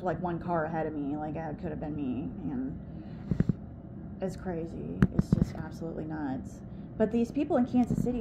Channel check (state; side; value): identical; both; correlation 1.00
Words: were like one car ahead of me. Like, that could have been me. And it's crazy. It's just absolutely nuts. But these people in Kansas